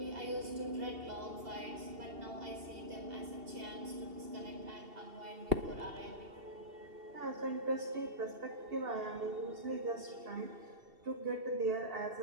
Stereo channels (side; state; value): left; late; 2.7 ms